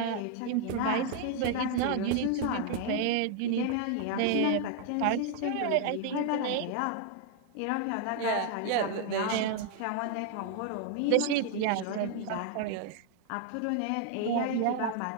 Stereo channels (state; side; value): different; both; correlation 0.00